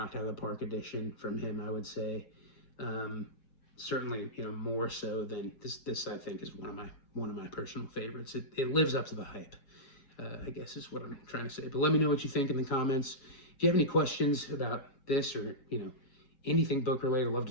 out of the park edition from him, I would say. Certainly, you know, more so than this I think is one of my personal favorites. It lives up to the hype. I guess is what I'm trying to say. But let me know what you think in the comments. If you have any questions about this or, anything book related, I'd love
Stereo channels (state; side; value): late; right; 7.1 ms